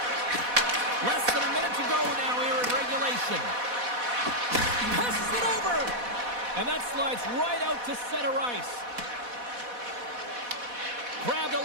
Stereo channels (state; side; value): late; left; 4.1 ms